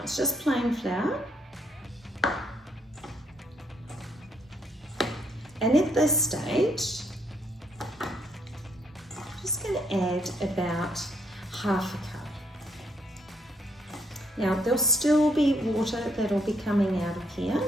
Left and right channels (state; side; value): normal; both; correlation 0.72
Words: it's just plain flour. And at this stage, going to add about half a cup. Now there'll still be water that'll be coming out of here,